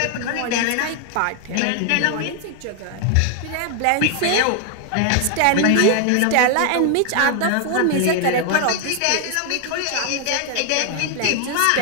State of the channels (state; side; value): different; both; correlation 0.00